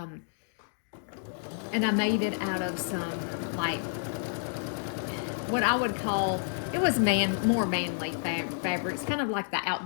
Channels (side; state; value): right; silent; digital silence